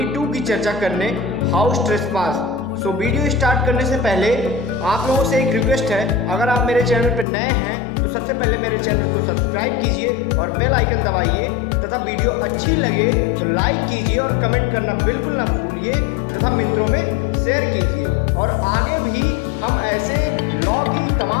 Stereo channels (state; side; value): drops out; right; at 7.2 s